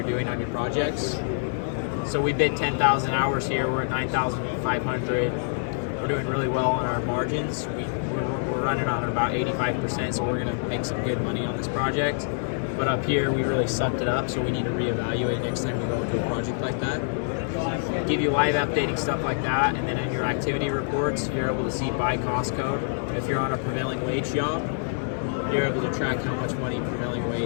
doing on your projects. So we bid 10,000 hours here. We're at 9,500. We're doing really well on our margins. We're running on about 85%, so we're going to make some good money on this project. But up here, we really sucked it up, so we need to reevaluate next time we go into a project like that. Give you live updating stuff like that, and then in your activity reports, you're able to see by cost code. If you're on a prevailing wage job, you're able to track how much money prevailing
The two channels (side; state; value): right; silent; 61 dB below the other